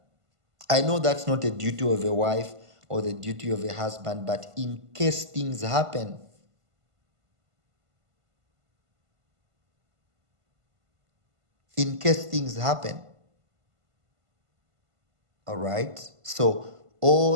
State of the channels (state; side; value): late; left; 1.5 ms